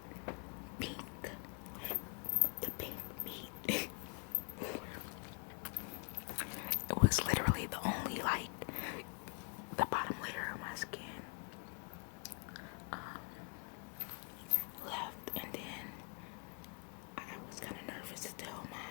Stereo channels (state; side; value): quieter; right; 39.7 dB